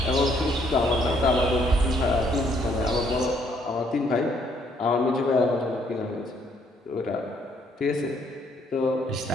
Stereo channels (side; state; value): both; normal; correlation 0.68